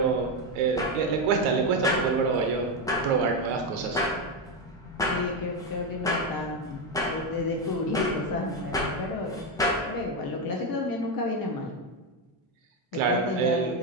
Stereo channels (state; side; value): normal; both; correlation 0.08